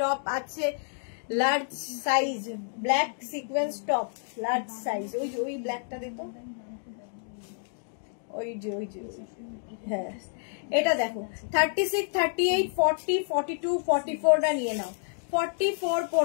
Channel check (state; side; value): silent; right; digital silence